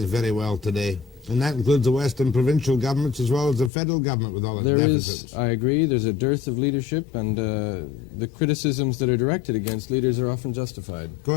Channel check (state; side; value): drops out; right; at 3.7 s